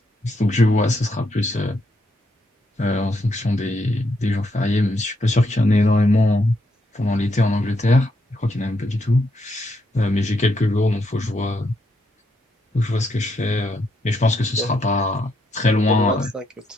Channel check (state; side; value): normal; both; correlation 0.77